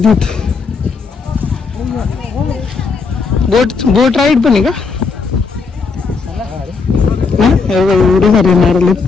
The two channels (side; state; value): right; quieter; 4.9 dB